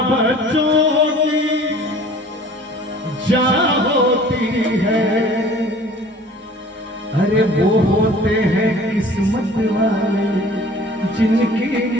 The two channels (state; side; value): normal; both; correlation 0.48